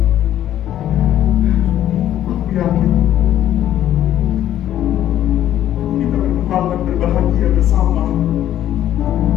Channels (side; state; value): right; quieter; 11.9 dB